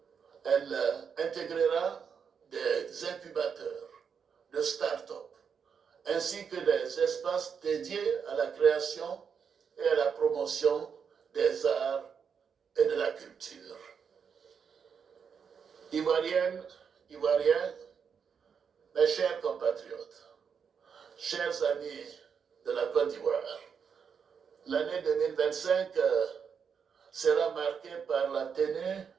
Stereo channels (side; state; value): left; quieter; 6.7 dB